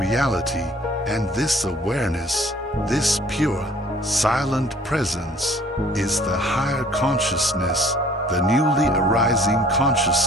and this awareness, this pure, silent presence, is the higher consciousness, the newly arising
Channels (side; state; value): both; normal; correlation 0.54